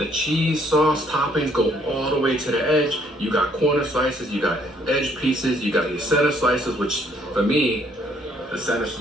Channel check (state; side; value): normal; both; correlation 0.66